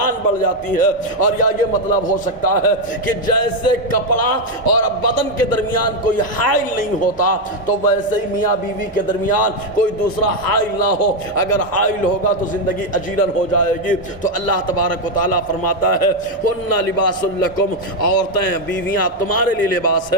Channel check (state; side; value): normal; both; correlation 0.05